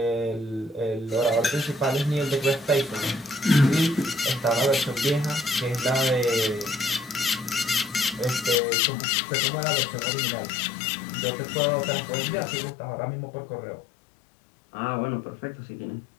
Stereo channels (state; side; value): drops out; right; at 8.6 s